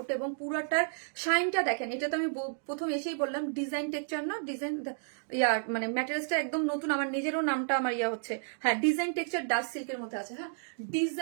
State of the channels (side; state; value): left; silent; digital silence